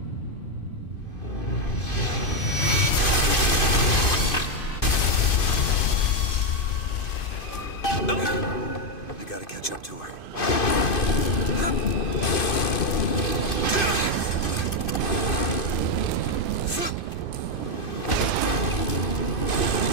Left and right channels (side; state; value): right; late; 2.5 ms